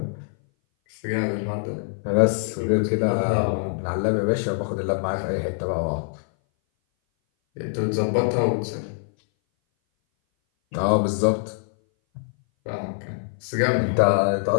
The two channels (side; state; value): right; silent; 59 dB below the other